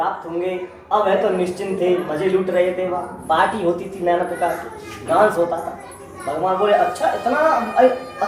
होंगे। अब वह तो निश्चिंत थे, मजे लूट रहे थे, वहाँ पार्टी होती थी नाना प्रकार की, डांस होता था। भगवान बोले अच्छा इतना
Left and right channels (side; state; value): both; identical; correlation 1.00